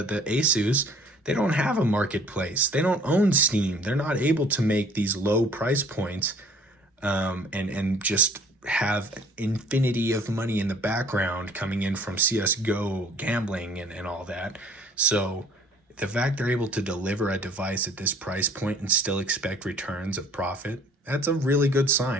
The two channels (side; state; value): both; normal; correlation 0.54